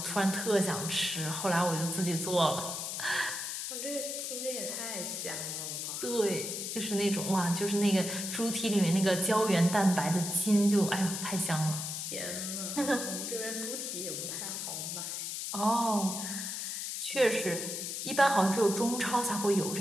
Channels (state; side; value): noise; left; hiss, 4 dB below the sound